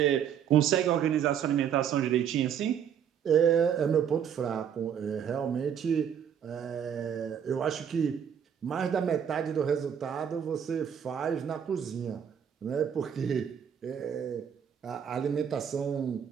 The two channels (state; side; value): quieter; left; 8.5 dB